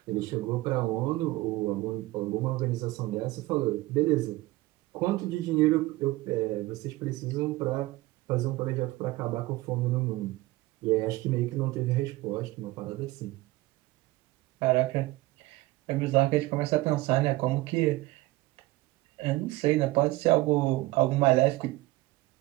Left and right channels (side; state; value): left; quieter; 19.1 dB